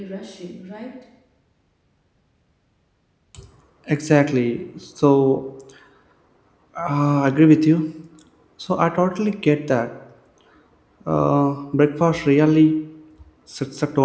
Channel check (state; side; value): identical; both; correlation 1.00